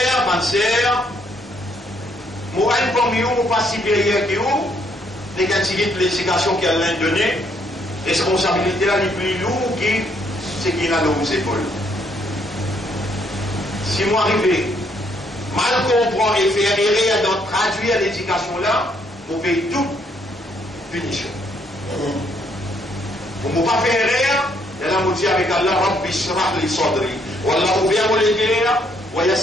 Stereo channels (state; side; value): normal; both; correlation 0.70